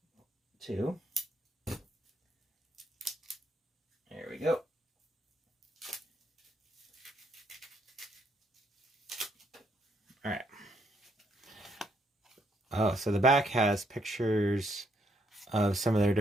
2. we go. All right. Oh, so the back has pictures of some of their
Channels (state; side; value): normal; both; correlation 0.73